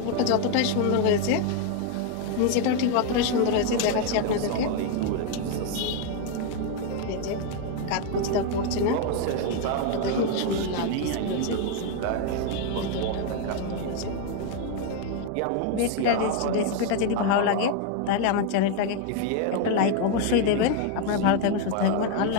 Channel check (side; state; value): both; different; correlation 0.01